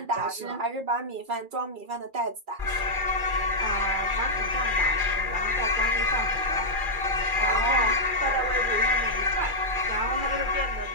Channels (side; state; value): left; late; 2.4 ms